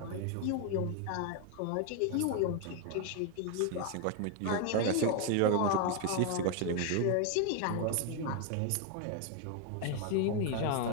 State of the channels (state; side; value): different; both; correlation 0.01